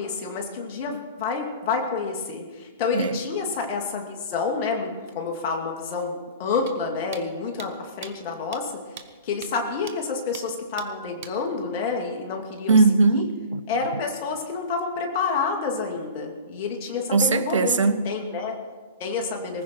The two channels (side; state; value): both; inverted; correlation -0.39